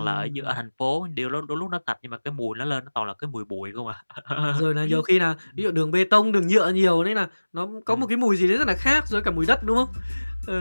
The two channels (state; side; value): inverted; both; correlation -1.00